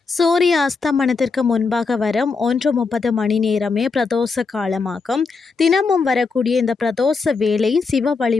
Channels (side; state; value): right; quieter; 4.6 dB